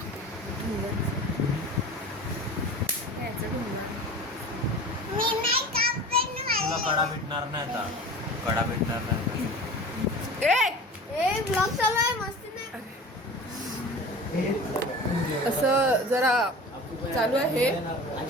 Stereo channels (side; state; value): both; normal; correlation 0.37